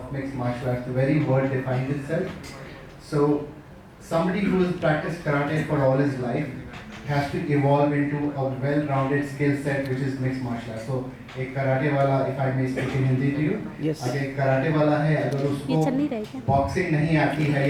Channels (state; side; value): identical; both; correlation 1.00